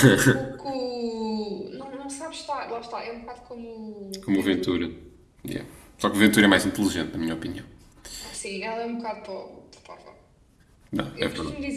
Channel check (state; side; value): identical; both; correlation 1.00